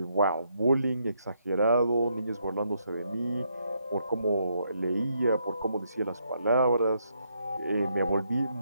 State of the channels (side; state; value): both; inverted; correlation -0.76